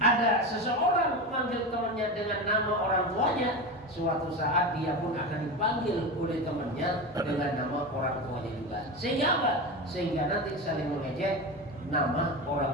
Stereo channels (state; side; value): normal; both; correlation 0.22